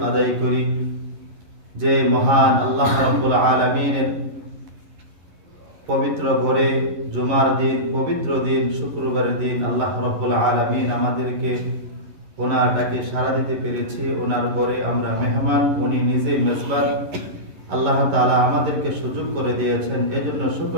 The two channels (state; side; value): late; left; 11 ms